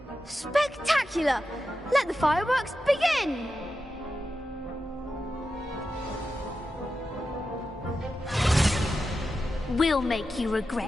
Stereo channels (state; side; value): normal; both; correlation 0.91